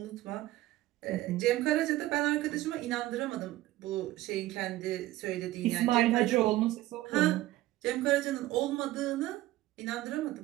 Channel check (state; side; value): quieter; left; 16.5 dB